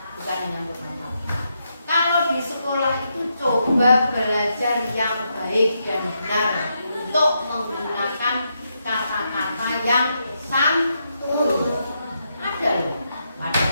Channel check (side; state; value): both; inverted; correlation -0.81